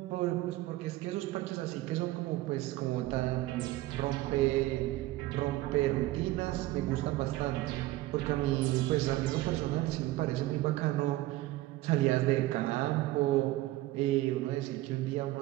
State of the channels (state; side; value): quieter; left; 17.3 dB